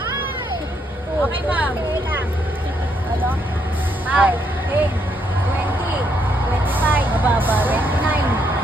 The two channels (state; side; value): normal; both; correlation 0.75